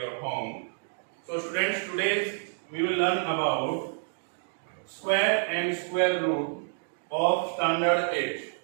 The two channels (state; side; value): silent; left; digital silence